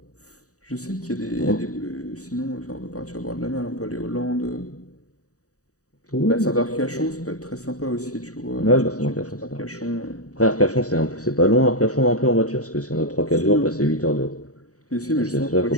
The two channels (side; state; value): right; late; 0.66 ms